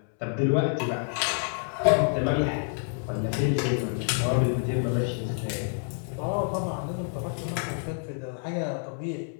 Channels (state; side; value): silent; right; 58 dB below the other